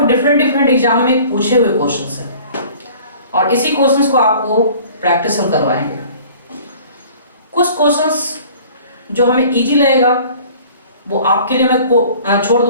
डिफरेंट एग्जाम में पूछे हुए क्वेश्चंस हैं, और इसी क्वेश्चंस को आपको प्रैक्टिस हम करवाएंगे। कुछ क्वेश्चंस जो हमें इजी लगेगा वो आपके लिए मैं छोड़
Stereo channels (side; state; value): both; inverted; correlation -0.48